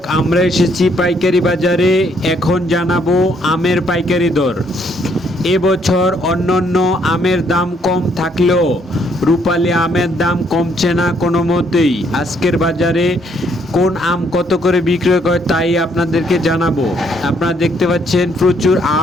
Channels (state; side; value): normal; both; correlation 0.69